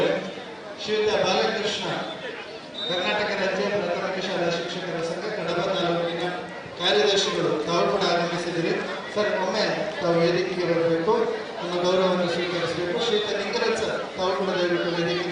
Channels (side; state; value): both; identical; correlation 1.00